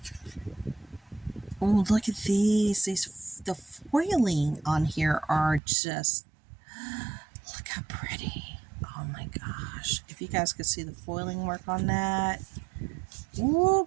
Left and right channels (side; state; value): left; drops out; at 5.6 s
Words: Oh, look at these. The foiling on here are just, look how pretty. Oh my gosh. If you guys could see the foiling work on that.